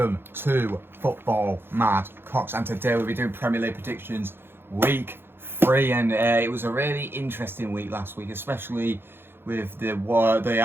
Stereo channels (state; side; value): late; left; 0.11 ms